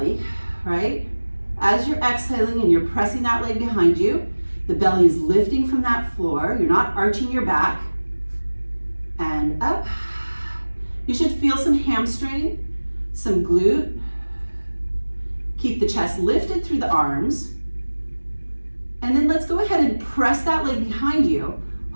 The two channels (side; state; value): both; inverted; correlation -1.00